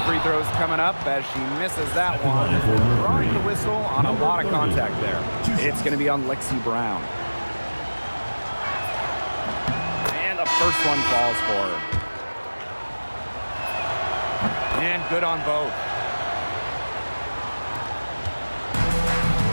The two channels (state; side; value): inverted; both; correlation -1.00